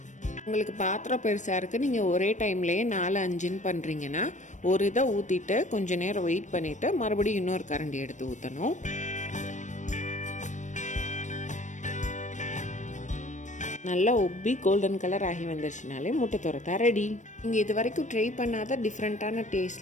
உங்களுக்கு பாத்திரம் பெருசாக இருக்குது, நீங்கள் ஒரே டைம்லேயே 4-5 பண்ணுறீங்கன்னா ஒரு இதை ஊற்றிட்டு கொஞ்சம் நேரம் வெயிட் பண்ணிவிட்டு மறுபடியும் இன்னொரு கரண்டி எடுத்து ஊற்றணும். நல்லா உப்பி கோல்டன் கலர் ஆகி வந்துருச்சுனாலே முட்டை தொரத்தா ரெடி. நீங்கள் இது வரைக்கும் ட்ரை பண்ணாத டிஃப்ரெண்ட்டான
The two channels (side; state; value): right; late; 0.35 ms